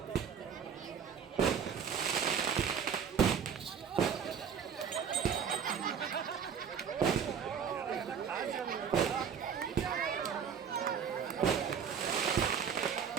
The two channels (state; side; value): quieter; left; 7.2 dB